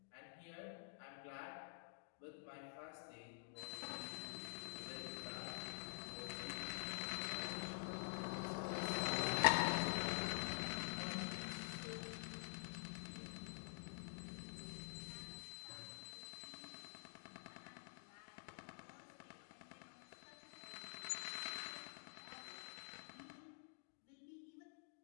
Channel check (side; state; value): right; silent; digital silence